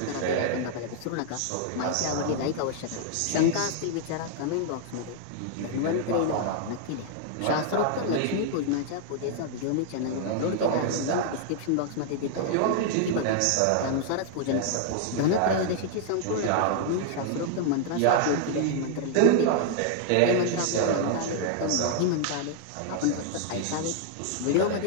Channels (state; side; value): different; both; correlation -0.01